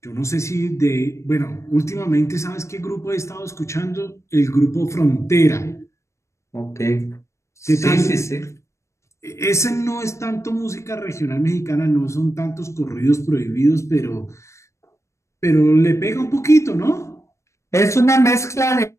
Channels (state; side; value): late; right; 0.14 ms